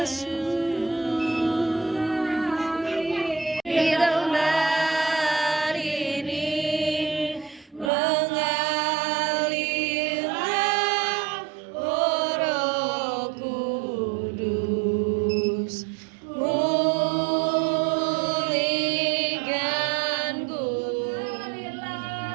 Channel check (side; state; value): left; drops out; at 7.9 s